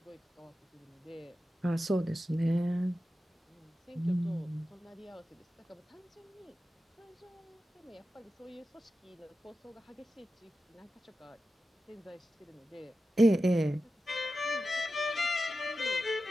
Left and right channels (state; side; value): normal; both; correlation 0.92